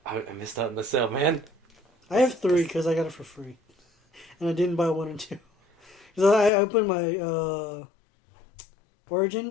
I missed out on the sale, man. I have 3 because I got it for free. And I didn't buy 1 and 2. Because I opened my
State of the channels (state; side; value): drops out; right; at 6.5 s